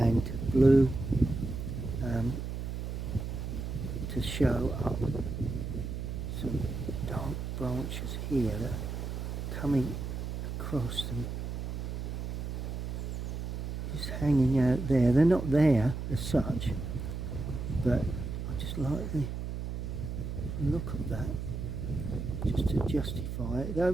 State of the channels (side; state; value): right; noise; hum, 4 dB below the sound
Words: blue, to show up some dark branches here that are coming across them, just hanging out there. They're not there as such, but I just like the look of that, just to justify